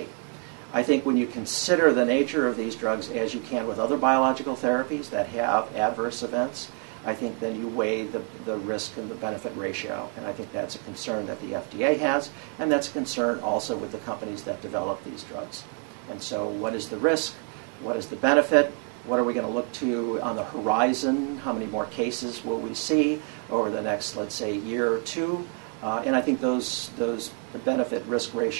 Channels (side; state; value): left; quieter; 39.4 dB